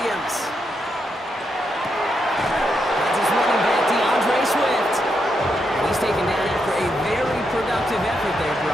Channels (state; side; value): normal; both; correlation 0.82